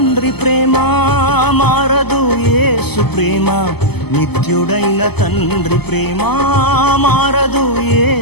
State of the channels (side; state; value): right; late; 0.97 ms